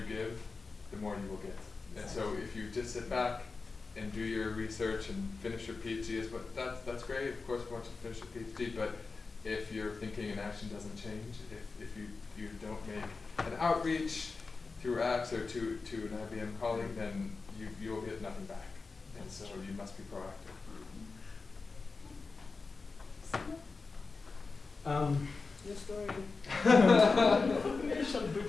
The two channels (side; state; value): right; quieter; 4.2 dB